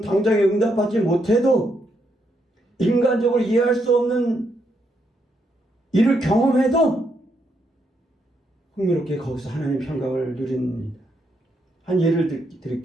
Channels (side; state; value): both; normal; correlation 0.78